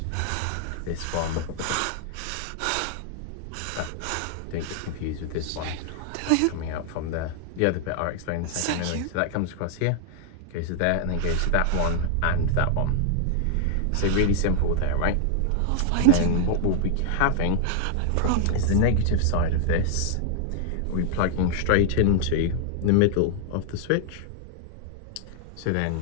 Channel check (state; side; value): different; both; correlation -0.01